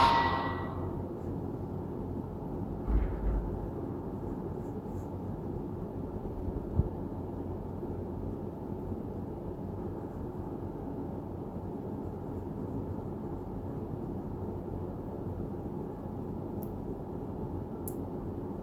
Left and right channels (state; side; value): identical; both; correlation 1.00